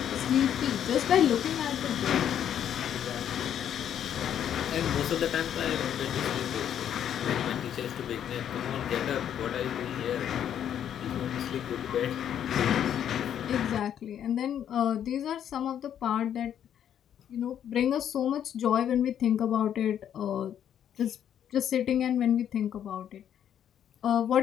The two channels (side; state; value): right; quieter; 9.7 dB